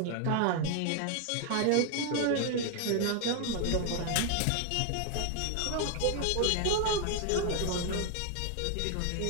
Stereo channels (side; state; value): both; different; correlation 0.01